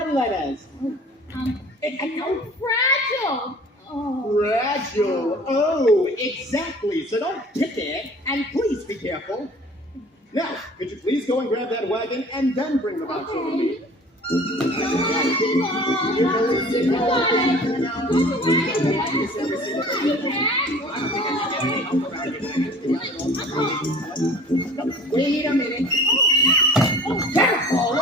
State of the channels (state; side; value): normal; both; correlation 0.46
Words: letters. Fragile. Oh. Fragile. Oh, exactly. So don't kick it, and please be careful. Now, could you please go and grab that wagon and then bring the box over to me? Wait a minute.